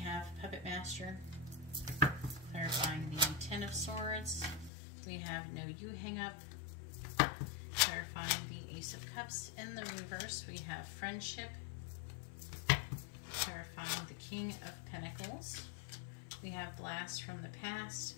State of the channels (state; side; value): drops out; right; at 4.7 s